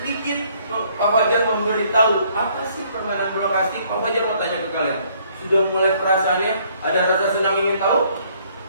Pak Fajar memberitahu apa sih permainan bola kasti. Pak Fajar mau tanya ke kalian, sudah mulai perasaannya ada rasa senang ingin tahu?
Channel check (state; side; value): inverted; both; correlation -0.64